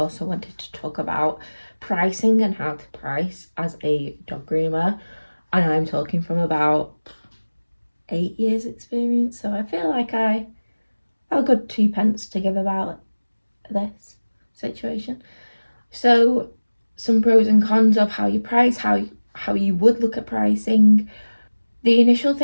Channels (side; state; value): both; inverted; correlation -1.00